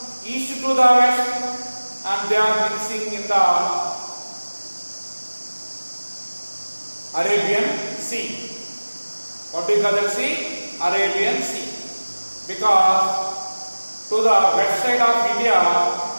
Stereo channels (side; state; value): both; inverted; correlation -1.00